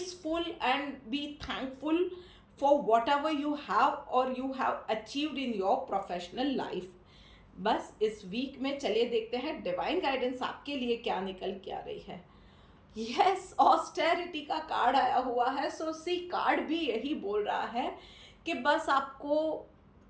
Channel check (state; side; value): identical; both; correlation 1.00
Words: and be thankful for whatever you have or you have achieved in your professional life। बस इस वीक में चलिए देखते हैं डिवाइन गाइडेंस आपके लिए क्या निकल के आ रही है। यस, ऑस्टेरिटी का कार्ड आया हुआ है। सो सी कार्ड भी यही बोल रहा है कि बस आपको